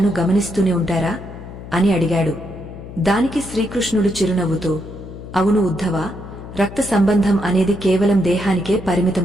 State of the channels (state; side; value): noise; left; hum, 13 dB below the sound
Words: గమనిస్తూనే ఉంటారా అని అడిగాడు. దానికి శ్రీకృష్ణుడు చిరునవ్వుతో, అవును ఉద్ధవా, రక్త సంబంధం అనేది కేవలం దేహానికే